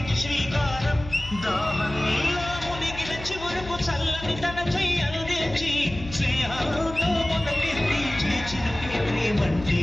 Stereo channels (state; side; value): noise; left; hum, 13 dB below the sound